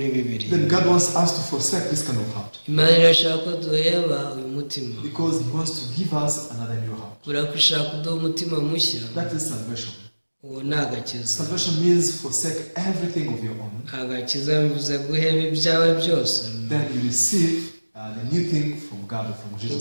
Bibiliya. Then God wants us to forsake this kind of heart. Imana irashaka ko duheba uyu mutima, because He wants to give us another new heart. urakushaka kuduha umutima mushya. That is salvation. Uwo ni agakiza. Salvation means forsake everything of your own. Agakiza bivuze guheba ibyawe byose. Then you receive the new thing from God, from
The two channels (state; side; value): inverted; both; correlation -1.00